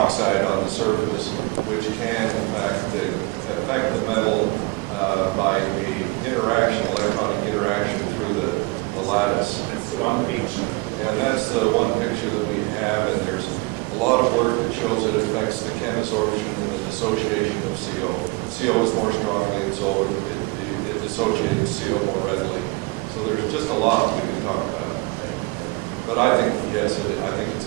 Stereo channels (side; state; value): left; quieter; 24.8 dB